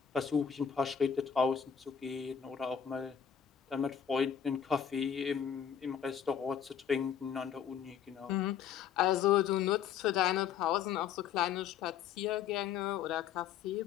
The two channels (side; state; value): right; quieter; 8.2 dB